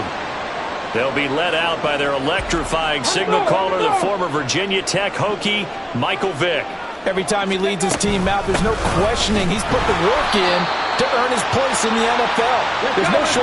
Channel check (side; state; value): both; identical; correlation 1.00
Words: They'll be led out by their electrifying signal caller, the former Virginia Tech Hokie, Michael Vick. Every time he leads his team out, there's no questioning. He's put the work in to earn his place in the NFL. There's no